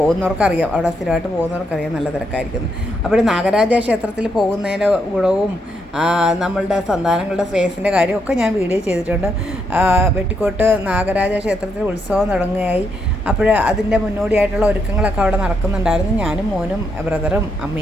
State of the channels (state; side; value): normal; both; correlation 0.78